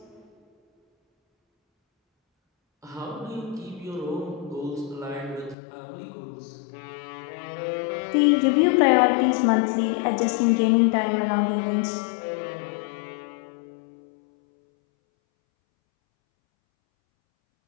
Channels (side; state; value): right; drops out; at 5.6 s